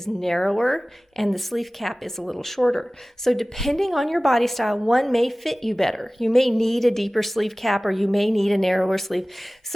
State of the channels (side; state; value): both; normal; correlation 0.98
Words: narrower and the sleeve cap is a little shorter. So depending on your body style, one may fit you better. You may need a deeper sleeve cap or you may need a narrower sleeve.